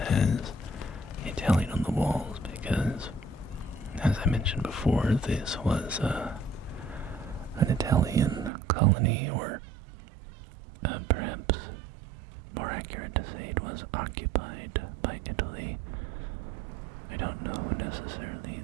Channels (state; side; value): drops out; left; at 8.5 s